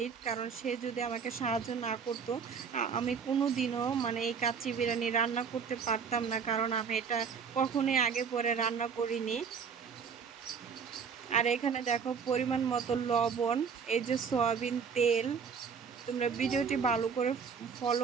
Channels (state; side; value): quieter; left; 6.2 dB